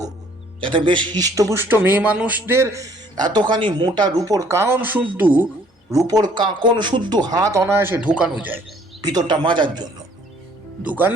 যাতে বেশ হিষ্টপুষ্ট মেয়ে মানুষদের এতখানি মোটা রূপোর কারণ শুদ্ধ রূপোর কাঁকন শুদ্ধ হাত অনায়াসে ঢোকানো যায় ভিতরটা মাজার জন্য।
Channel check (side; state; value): both; normal; correlation 0.60